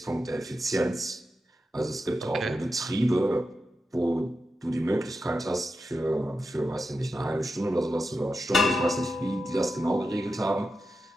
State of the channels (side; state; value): both; normal; correlation 0.89